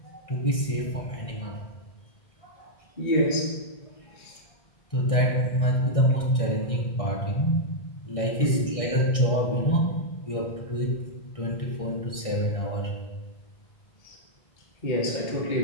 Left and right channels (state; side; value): late; right; 1.6 ms